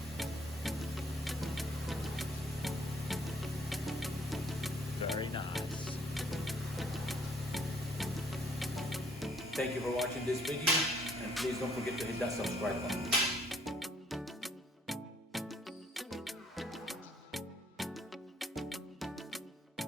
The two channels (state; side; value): normal; both; correlation 0.63